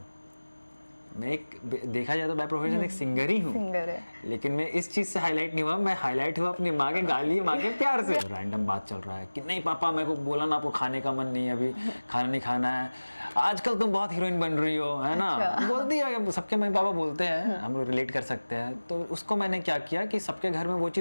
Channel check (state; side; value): inverted; both; correlation -1.00